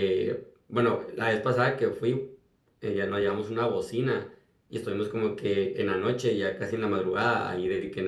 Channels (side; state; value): both; identical; correlation 1.00